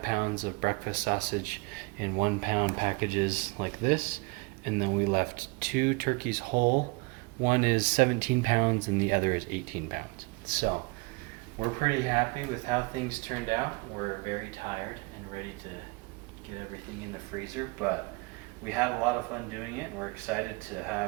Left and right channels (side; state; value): left; quieter; 28.1 dB